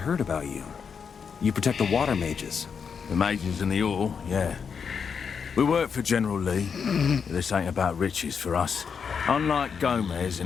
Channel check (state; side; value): quieter; right; 6.4 dB